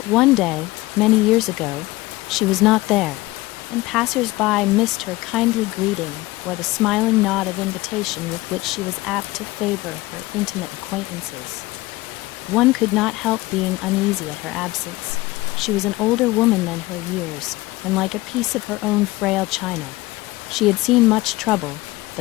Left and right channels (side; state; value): right; quieter; 19.8 dB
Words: one day, many years ago, she was not there, and passers-by missed her kindly greeting or the smiling nod of invitation with which she was apt to favor her intimate acquaintances. One could not help being uneasy at her absence. She was an older woman than her years, and like a piece of her own frail china. She had seen much trouble,